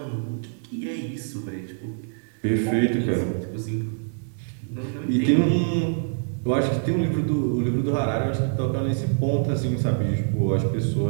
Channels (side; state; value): left; silent; digital silence